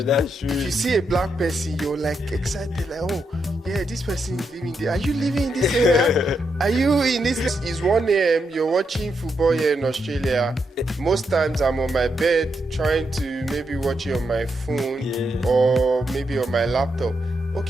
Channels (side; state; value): both; normal; correlation 0.82